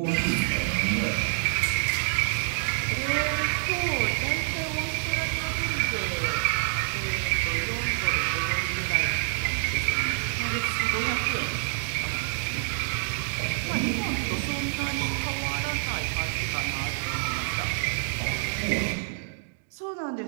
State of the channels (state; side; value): silent; left; digital silence